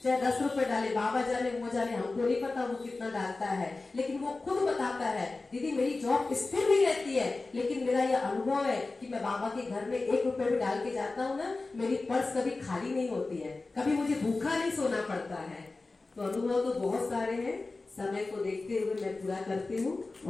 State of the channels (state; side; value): quieter; right; 3.5 dB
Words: चाहे 10 रुपए डाले, बाबा जाने वो जाने, हमको नहीं पता वो कितना डालता है, लेकिन वो खुद बताता है दीदी मेरी जॉब स्थिर नहीं रहती है, लेकिन मेरा ये अनुभव है कि मैं बाबा के घर में 1 रुपए भी डाल के जाता हूँ ना, मेरी पर्स कभी खाली नहीं होती है, कभी मुझे भूखा नहीं सोना पड़ता है। तो अनुभव तो बहुत सारे हैं, समय को देखते हुए मैं पूरा करती हूँ।